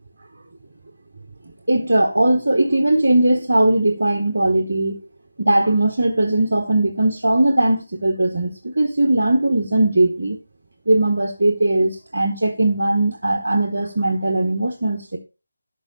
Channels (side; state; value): both; inverted; correlation -0.93